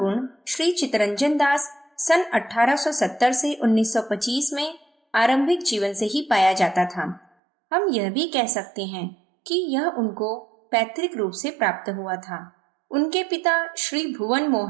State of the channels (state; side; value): drops out; left; at 7.2 s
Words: श्री चितरंजन दास सन 1870 से 1925 में आरंभिक जीवन से ही पाया जाता था। हम यह भी कह सकते हैं कि यह उनको पैतृक रूप से प्राप्त हुआ था। उनके पिता श्री भुवन